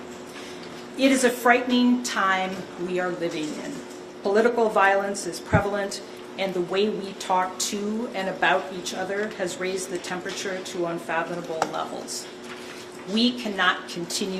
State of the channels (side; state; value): both; identical; correlation 1.00